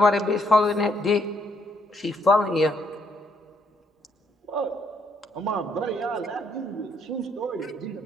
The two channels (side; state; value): both; normal; correlation 0.72